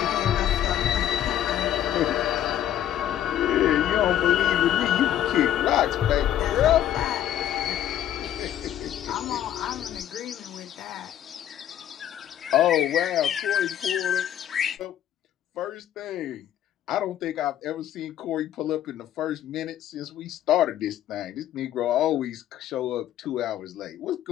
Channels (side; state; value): right; quieter; 11.3 dB